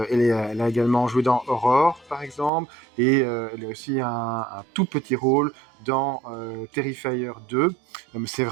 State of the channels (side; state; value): left; drops out; at 2.5 s